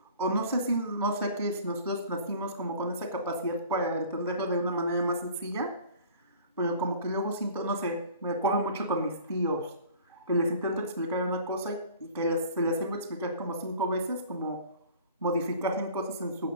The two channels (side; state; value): both; inverted; correlation -0.46